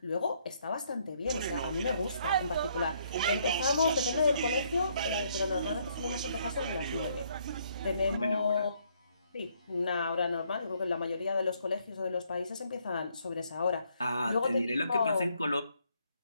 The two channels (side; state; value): both; inverted; correlation -0.69